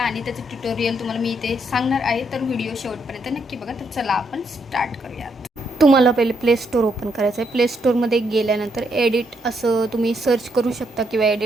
आणि त्याचं ट्युटोरियल तुम्हाला मी इथे सांगणार आहे. तर व्हिडिओ शेवटपर्यंत नक्की बघा. तर चला आपण स्टार्ट करूयात. तुम्हाला पहिले प्ले स्टोर ओपन करायचं आहे. प्ले स्टोरमध्ये गेल्यानंतर एडिट असं तुम्ही सर्च करू शकता किंवा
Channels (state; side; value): normal; both; correlation 0.76